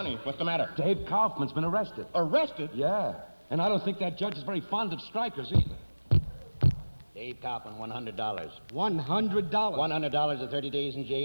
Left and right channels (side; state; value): both; inverted; correlation -1.00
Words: What's the matter? Dave Kaufman's been arrested. Arrested? Yeah, and I don't think that judge is very fond of strikers either. Dave Kaufman, $100. $100? $100 or 30 days in